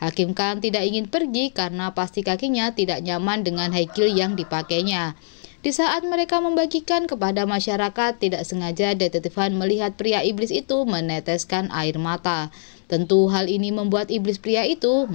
Kang tidak ingin pergi karena pasti kakinya tidak nyaman dengan high heel yang dipakainya. Di saat mereka membagikan kepada masyarakat, tidak sengaja detektif Han melihat pria iblis itu meneteskan air mata. Tentu hal ini membuat iblis pria itu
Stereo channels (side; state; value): right; silent; digital silence